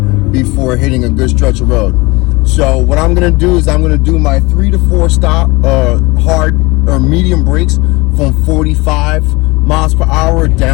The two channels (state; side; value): quieter; right; 23.8 dB